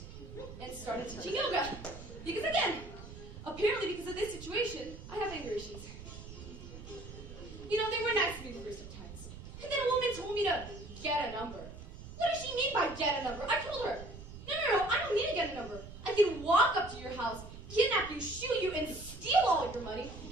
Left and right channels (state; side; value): noise; right; rumble, 13 dB below the sound